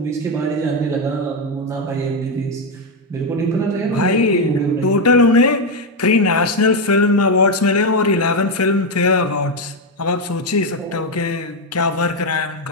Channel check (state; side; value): normal; both; correlation 0.06